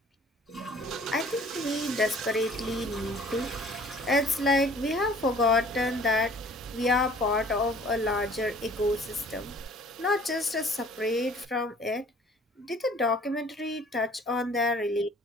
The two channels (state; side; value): normal; both; correlation 0.52